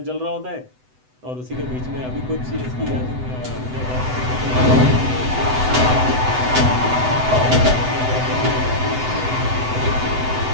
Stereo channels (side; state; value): left; late; 7.9 ms